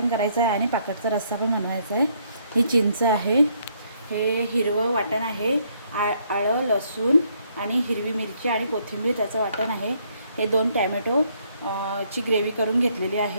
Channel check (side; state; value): both; inverted; correlation -0.69